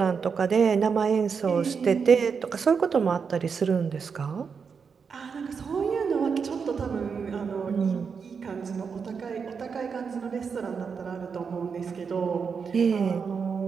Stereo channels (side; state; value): left; quieter; 5.9 dB